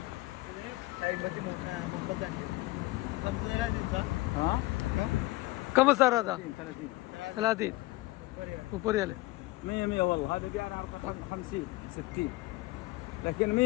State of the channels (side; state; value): right; quieter; 20.5 dB